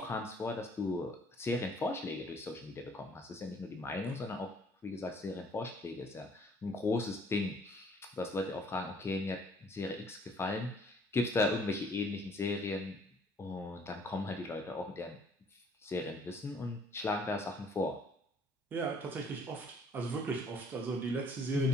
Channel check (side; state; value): both; normal; correlation 0.60